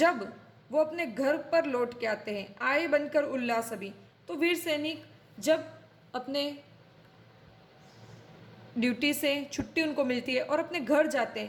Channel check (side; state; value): both; identical; correlation 1.00